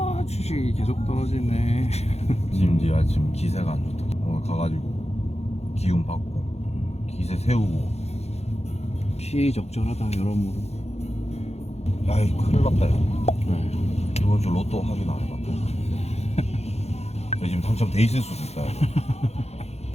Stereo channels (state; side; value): late; right; 0.31 ms